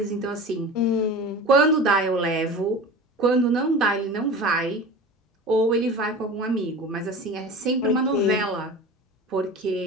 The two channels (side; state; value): both; normal; correlation 0.34